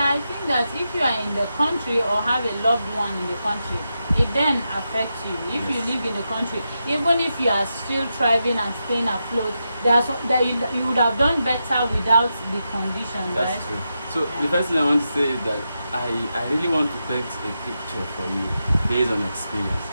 think that if you are in the country or have a loved one in the country, it then affects you. If you live in the country, even if you are still thriving and staying afloat, you would have done better without the conditions. That's right? true. So the first thing I want to say is that I really want to paint a picture for you based on experience.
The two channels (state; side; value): inverted; both; correlation -0.87